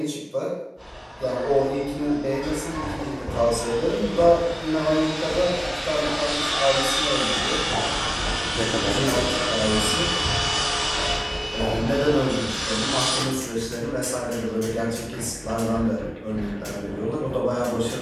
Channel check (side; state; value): both; identical; correlation 1.00